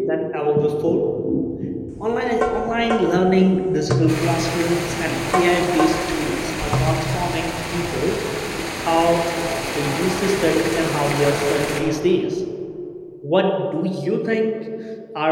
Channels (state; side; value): identical; both; correlation 1.00